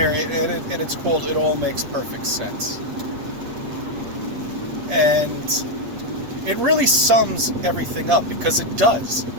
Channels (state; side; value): late; left; 8.3 ms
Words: and it's called It All Makes Perfect Sense. And it really sums everything up, because it does.